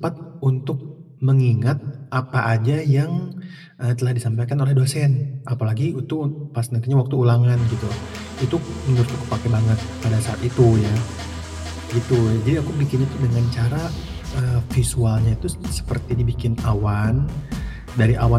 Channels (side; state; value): both; identical; correlation 1.00